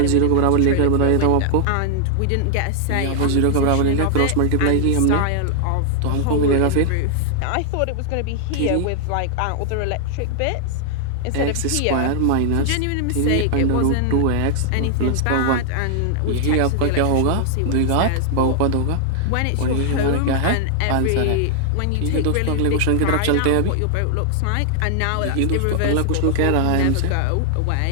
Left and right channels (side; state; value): both; different; correlation 0.00